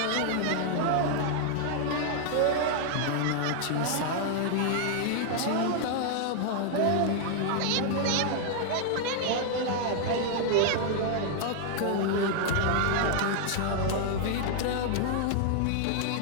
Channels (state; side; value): different; both; correlation 0.00